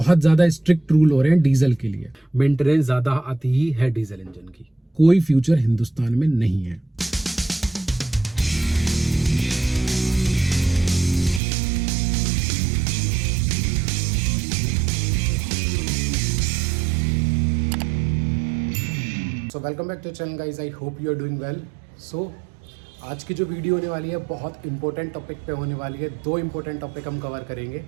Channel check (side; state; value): left; drops out; at 11.4 s